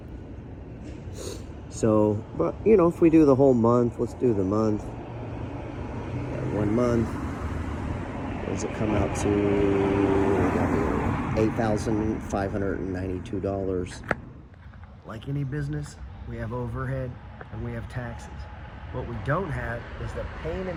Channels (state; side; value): identical; both; correlation 1.00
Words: So, but you know, if we do the whole month, let's do the month. 1 month. What does it come out to? $8,592. Like any business, we have overhead and we have taxes. What we don't have is the pain